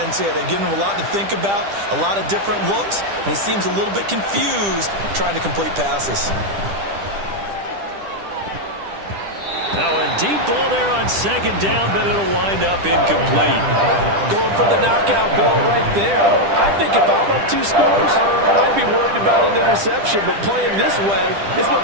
here. They're giving him a lot to think about, a lot of different looks, and he seems a little bit confused trying to complete passes. Now a deep ball there on 2nd down, but it'll wind up incomplete. Going for the knockout ball right there. I think if I'm up 2 scores, I'd be worried about an interception, but playing this way is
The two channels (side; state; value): left; late; 10 ms